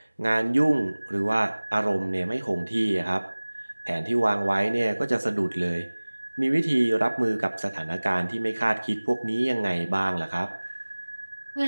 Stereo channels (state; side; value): inverted; both; correlation -1.00